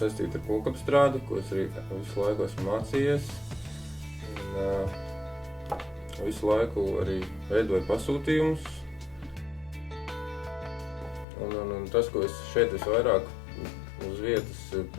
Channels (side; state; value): right; drops out; at 11.2 s